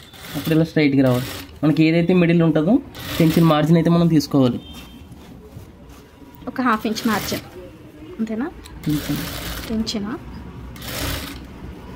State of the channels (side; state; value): both; identical; correlation 1.00